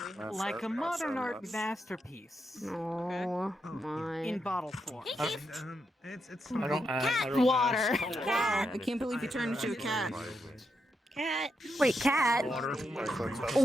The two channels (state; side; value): normal; both; correlation 0.83